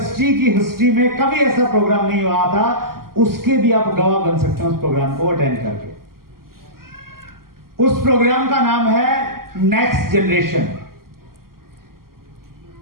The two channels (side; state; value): left; late; 0.92 ms